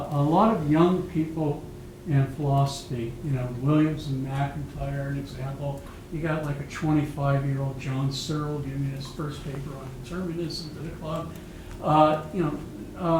lot of young people in philosophy. Williams and MacIntyre, an example. You got like a 25-year-old John Searle giving his first paper on determinism to the club.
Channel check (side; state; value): both; identical; correlation 1.00